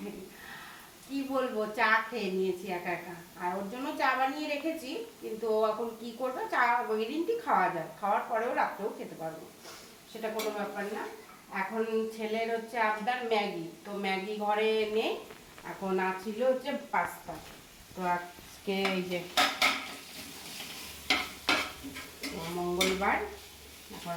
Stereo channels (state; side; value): identical; both; correlation 1.00